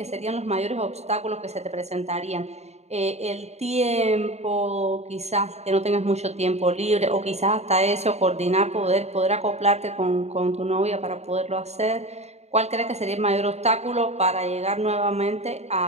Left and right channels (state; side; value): late; left; 0.32 ms